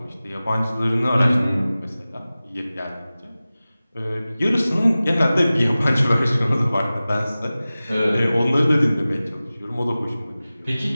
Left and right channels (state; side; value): inverted; both; correlation -0.97